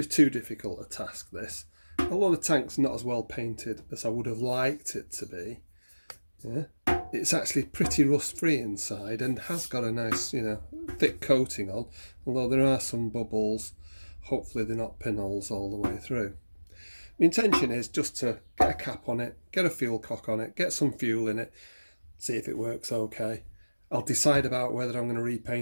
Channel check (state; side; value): inverted; both; correlation -1.00